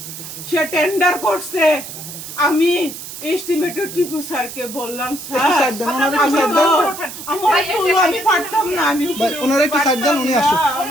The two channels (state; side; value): noise; right; hiss, 11 dB below the sound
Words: সে টেন্ডার করছে আমি এস্টিমেটেড টিপু স্যারকে বললাম স্যার আমি তো আমার তো আমি পারতাম না আমি ওনার একটু সাইড দেন, উনি আসুক।